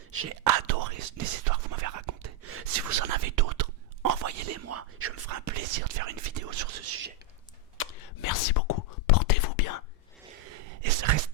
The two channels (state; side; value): normal; both; correlation 0.02